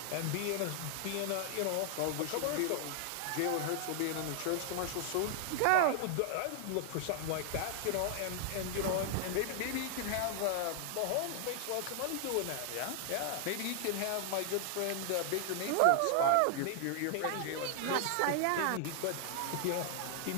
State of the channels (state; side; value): different; both; correlation 0.00